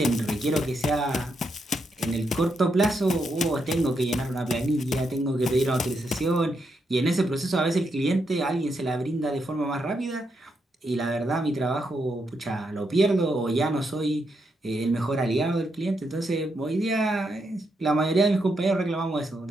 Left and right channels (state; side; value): normal; both; correlation 0.81